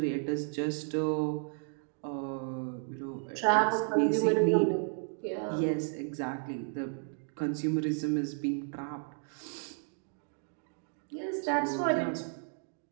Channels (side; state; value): left; silent; 56 dB below the other